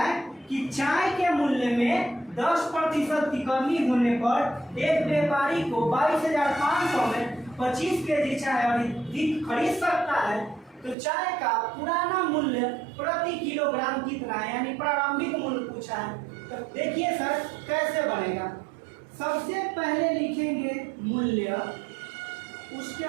कि चाय के मूल्य में 10% की कमी होने पर एक व्यापारी को 22,500 में 25 केजी चाय अधिक खरीद सकता है, तो चाय का पुराना मूल्य प्रति किलोग्राम कितना है, यानी प्रारंभिक मूल्य पूछा है। तो देखिए सर कैसे बनेगा। सबसे पहले लिखेंगे मूल्य, उसके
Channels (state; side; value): drops out; left; at 11.0 s